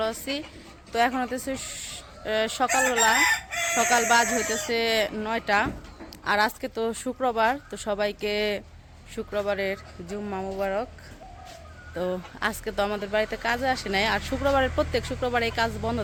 আছি। তো এখন হতেছে সকালবেলা, সকাল বাজ হইতেছে 9টা। আর আজকে তো শুক্রবার, তো সবাইকে শুক্রবারের জুম্মা মুবারক। তো আজকে তো আমাদের বাড়িতে কাজে আসে নাই, আর শুক্রবারের প্রত্যেক শুক্রবার এই কাজ বন্ধ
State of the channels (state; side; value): identical; both; correlation 1.00